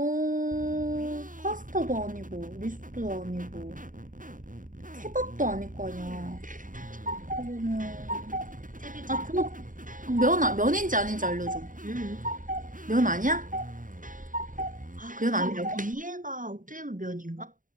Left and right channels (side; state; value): left; late; 0.39 ms